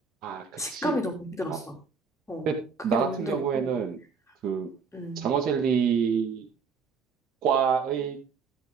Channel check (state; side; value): quieter; left; 5.4 dB